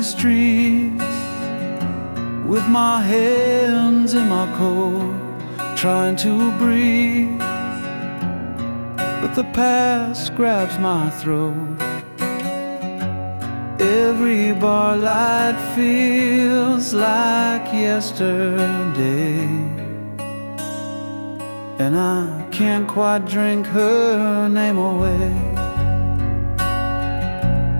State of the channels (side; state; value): both; inverted; correlation -1.00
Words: streets with my hands in my coat, trying to breathe, but the past grabs my throat. Every bar light feels like yesterday, and I can't quite drink her name away.